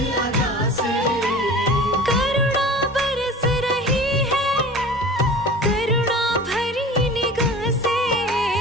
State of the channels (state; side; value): normal; both; correlation 0.40